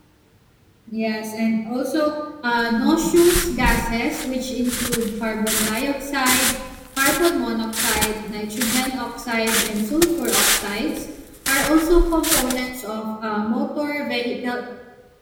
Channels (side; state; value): both; identical; correlation 1.00